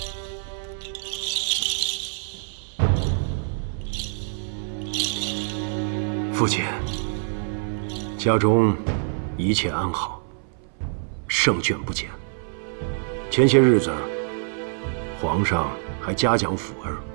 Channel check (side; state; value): left; silent; 58 dB below the other